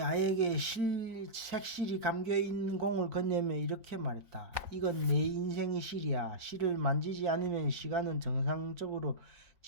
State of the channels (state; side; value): late; left; 3.9 ms